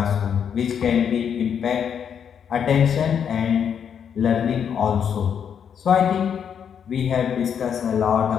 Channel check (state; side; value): quieter; right; 7.9 dB